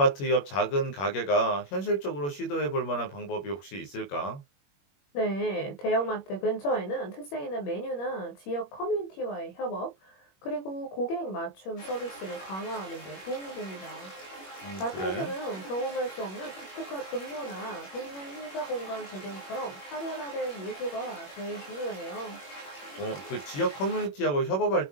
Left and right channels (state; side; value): late; right; 21 ms